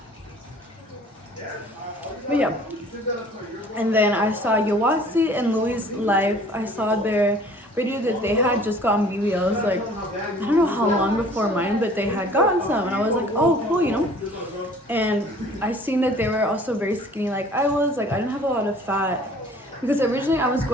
But yeah, and then I saw Yawasi and Louis' live. I saw their video that they had just gotten BBLs, like I don't know how long before mine, but they had gotten some, and I was like, oh cool, you know. And I seen that they were also very skinny like I was. Like I didn't have a lot of fat, because originally I was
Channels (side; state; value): both; normal; correlation 0.51